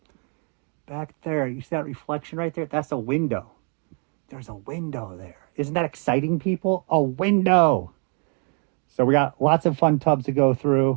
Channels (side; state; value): left; quieter; 39.9 dB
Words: back there. You see that reflection right there? That's a window. There's a window there. Isn't that exciting, people? A window. So we got lots of fun tubs to go